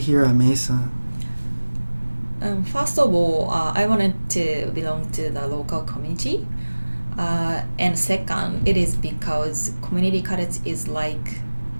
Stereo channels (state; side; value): inverted; both; correlation -1.00